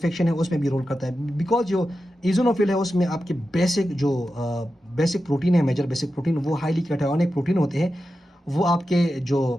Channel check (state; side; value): normal; both; correlation 0.91